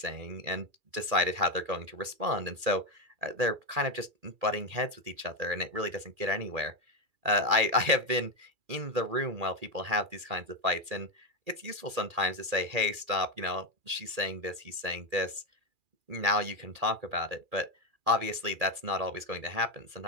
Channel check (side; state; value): left; late; 2.4 ms